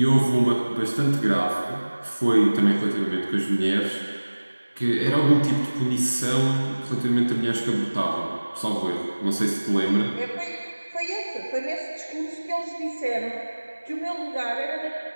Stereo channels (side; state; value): both; inverted; correlation -1.00